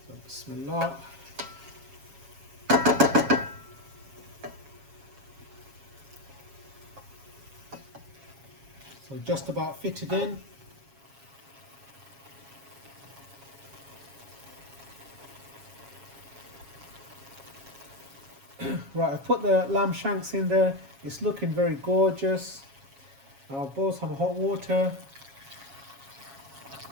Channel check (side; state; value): left; late; 7.3 ms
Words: So bismillah. So just about fitted in. Right, I've put the lamb shanks in there. It's looking very gorgeous. I'll boil some hot water.